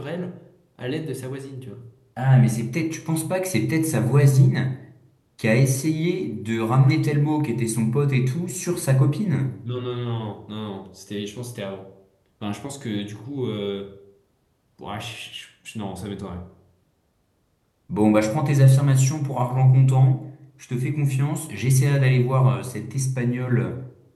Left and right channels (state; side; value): identical; both; correlation 1.00